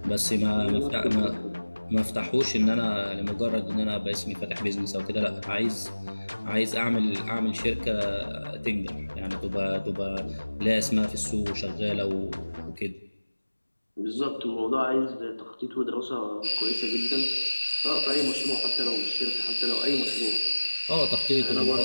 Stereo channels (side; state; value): both; inverted; correlation -1.00